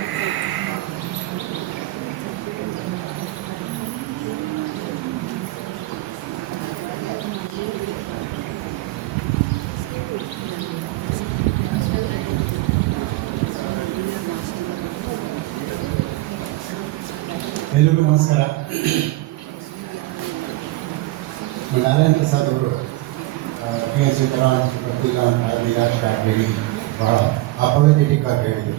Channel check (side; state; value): left; quieter; 18.5 dB